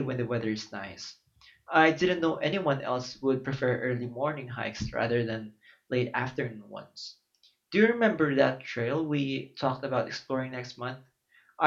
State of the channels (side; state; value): both; identical; correlation 1.00